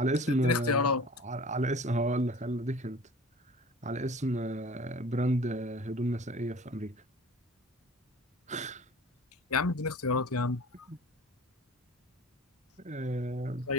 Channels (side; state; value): both; normal; correlation 0.43